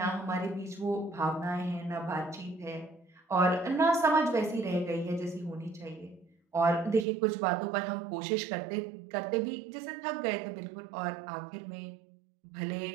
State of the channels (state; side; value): drops out; left; at 7.1 s